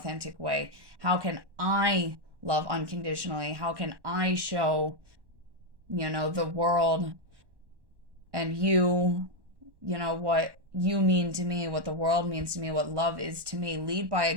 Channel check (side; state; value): left; late; 1.1 ms